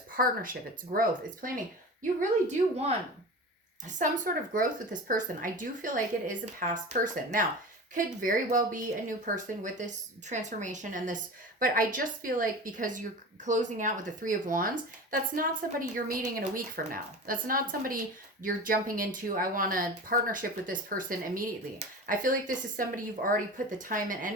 partnership, it's growth, it's planning. You really do want some sort of growth with this person. I do feel like it is a past person. Now, could very well be a new person with this transformation and this, but I just feel like because you're closing out with the Three of Wands, that's not somebody you're meeting in a week from now. That's not somebody you're jumping into, I want a partnership with this person immediately. I feel like this is somebody you've already put the time and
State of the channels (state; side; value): normal; both; correlation 0.32